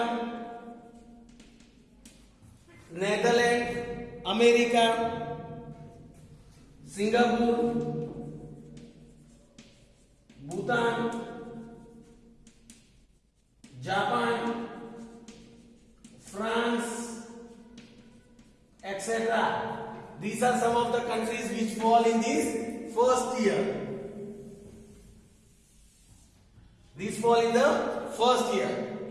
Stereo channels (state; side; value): identical; both; correlation 1.00